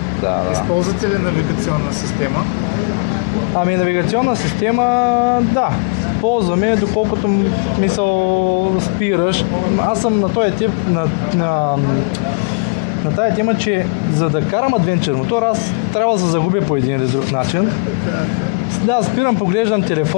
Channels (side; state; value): right; quieter; 32.3 dB